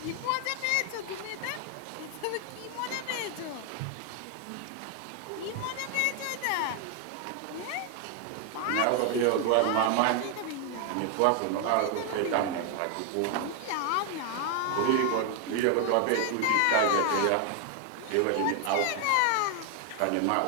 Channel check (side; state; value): both; different; correlation 0.01